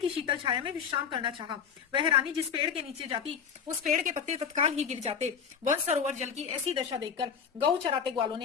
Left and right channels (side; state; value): right; quieter; 7.0 dB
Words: शीतल छाया में विश्राम करना चाहा। वह रानी जिस पेड़ के नीचे जाती उस पेड़ के पत्ते तत्काल ही गिर जाते। वन सरोवर जल की ऐसी दशा देखकर गौ चराते ग्वालों